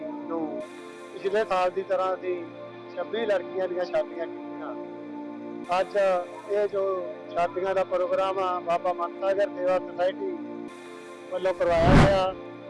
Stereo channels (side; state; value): both; identical; correlation 1.00